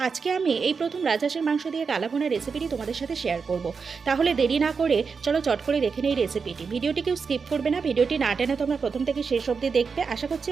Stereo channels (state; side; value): quieter; left; 5.4 dB